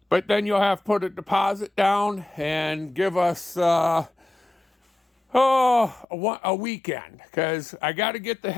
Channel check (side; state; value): right; drops out; at 6.1 s